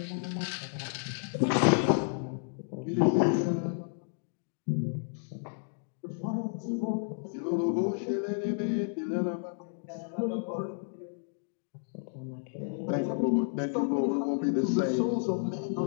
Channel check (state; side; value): silent; right; digital silence